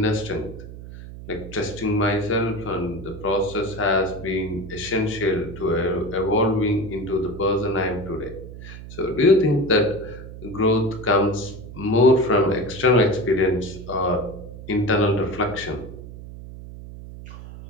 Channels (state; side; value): noise; right; hum, 13 dB below the sound